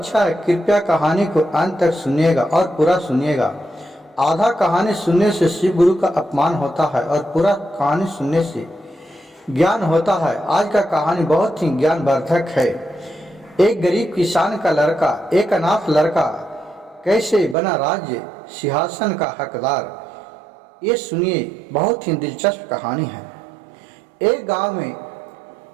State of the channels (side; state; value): left; drops out; at 17.6 s